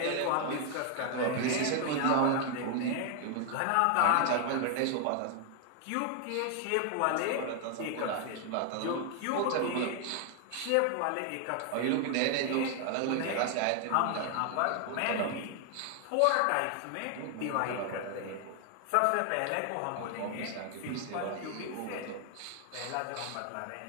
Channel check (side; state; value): both; different; correlation 0.00